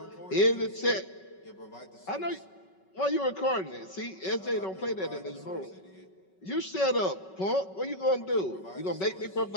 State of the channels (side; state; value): right; late; 5.3 ms